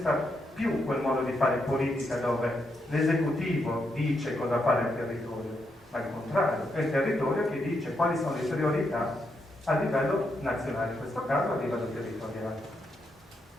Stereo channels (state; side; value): normal; both; correlation 0.80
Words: più quel modo di fare politica dove l'esecutivo dice cosa fare al territorio, ma al contrario, è il territorio che dice quali sono le priorità a livello nazionale, in questo caso a livello territoriale.